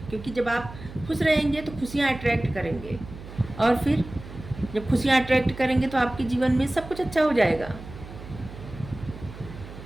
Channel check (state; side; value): noise; right; hum, 14 dB below the sound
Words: क्योंकि जब आप खुश रहेंगे तो खुशियाँ अट्रैक्ट करेंगे, और फिर जब खुशियाँ अट्रैक्ट करेंगे तो आपके जीवन में सब कुछ अच्छा हो जाएगा।